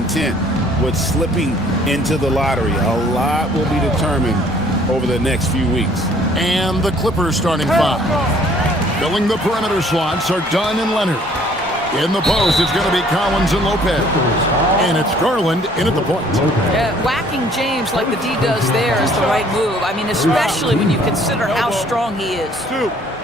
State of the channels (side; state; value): both; normal; correlation 0.58